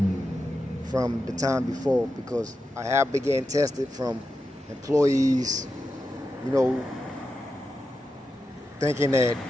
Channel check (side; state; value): both; normal; correlation 0.89